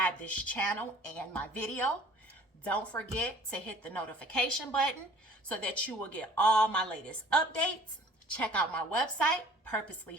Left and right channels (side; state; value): both; normal; correlation 0.51